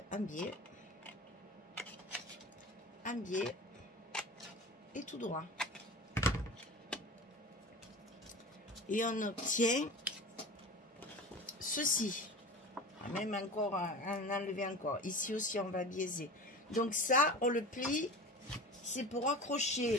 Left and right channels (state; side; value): normal; both; correlation 0.34